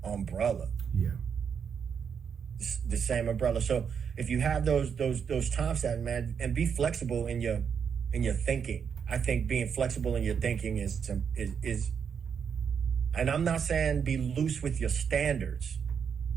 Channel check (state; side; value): quieter; left; 7.0 dB